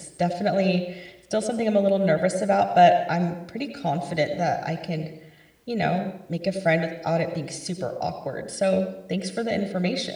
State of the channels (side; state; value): both; identical; correlation 1.00